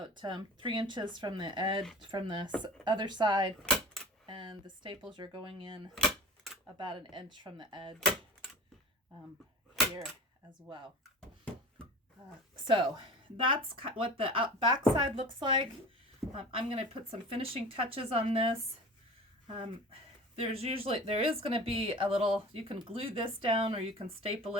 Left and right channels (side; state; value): both; normal; correlation 0.37